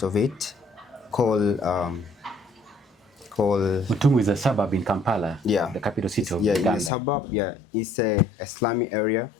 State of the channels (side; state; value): right; drops out; at 6.9 s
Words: of it, called Mutungu is a suburb in Kampala, the capital city of Uganda. Yeah, in the suburb, it's a slummy area